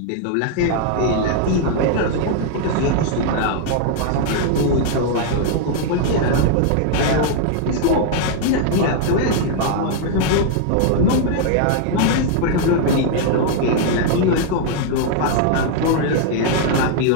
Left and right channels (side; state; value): both; different; correlation 0.00